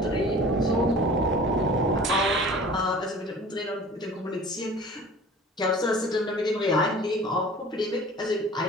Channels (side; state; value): both; normal; correlation 0.44